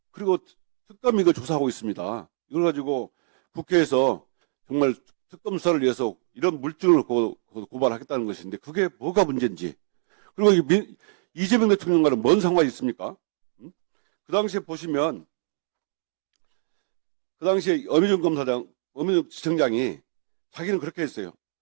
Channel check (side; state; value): left; silent; digital silence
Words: 그리고 특검이 이걸 조사하고 있습니다. 이걸 가지고 국회에서 정말 특검 수사를 위해서 이런 물증을 고발하겠다는 것인데 그게 뭐가 문제인지. 그리고 이재명 대통령과는 뭔 상관이 있습니까? 그 당시에 보시면 그 당시에 어미준 지청장이 자기는 그렇게 했어요.